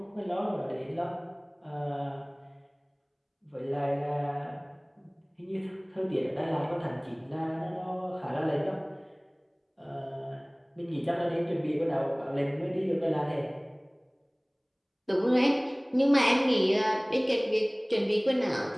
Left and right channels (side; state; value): both; identical; correlation 1.00